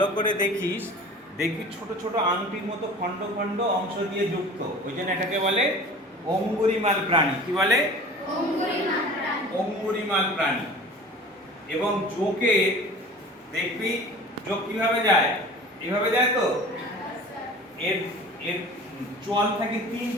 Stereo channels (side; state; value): both; normal; correlation 0.41